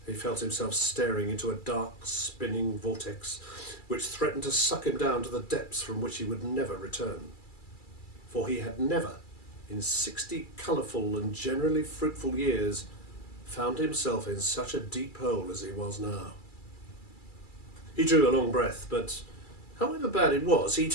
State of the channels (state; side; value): late; right; 2.3 ms